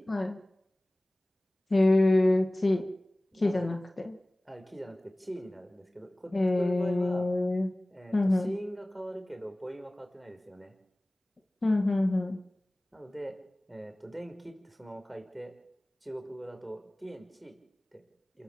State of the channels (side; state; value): both; normal; correlation 0.98